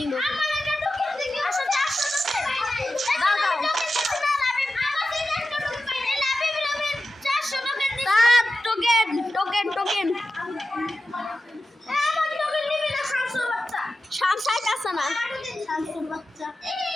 আমার একটা টোকেন দিও আচ্ছা 400 দাও টোকেন আমার টোকেন নিবি না শামসুর বাচ্চা শামসাই কাছে না শামসুর বাচ্চা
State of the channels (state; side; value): normal; both; correlation 0.93